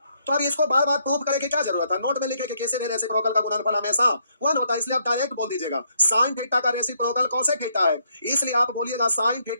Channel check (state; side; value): inverted; both; correlation -0.73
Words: तो अब इसको बार बार प्रूव करने की क्या जरूरत है? नोट में लिखे कि किसी भी रेसिप्रोकल का गुणनफल हमेशा वन होता है, इसलिए आप डायरेक्ट बोल दीजिएगा साइन थीटा का रेसिप्रोकल कॉसेक थीटा है, इसलिए आप बोलिएगा sine